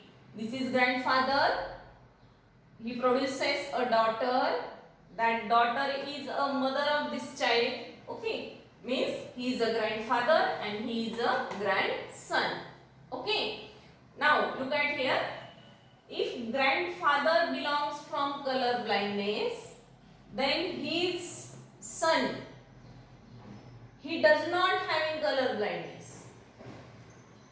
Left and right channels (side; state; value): both; identical; correlation 1.00